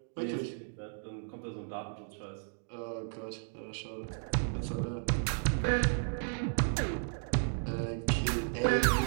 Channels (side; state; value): left; silent; digital silence